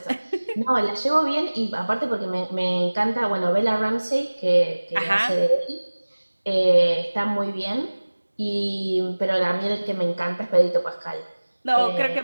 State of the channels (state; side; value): inverted; both; correlation -1.00